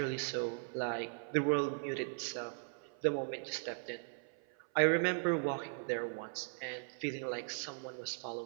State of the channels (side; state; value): left; silent; 52 dB below the other